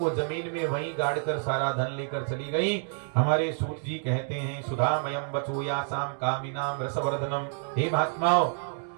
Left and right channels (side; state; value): left; silent; 55 dB below the other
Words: जमीन में वहीं गाड़कर सारा धन लेकर चली गईं। हमारे सूत जी कहते हैं, सुधामयम वचूयासाम कामिनाम रसवर्धनम। हे महात्माओं,